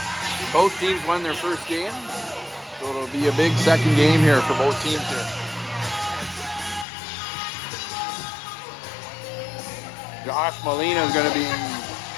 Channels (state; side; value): drops out; right; at 6.9 s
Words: Both teams won their first game, so it'll be a big second game here for both teams here. Josh Molina is going to be